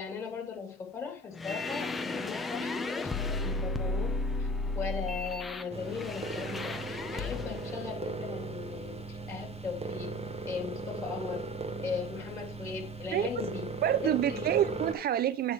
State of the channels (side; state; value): both; normal; correlation 0.40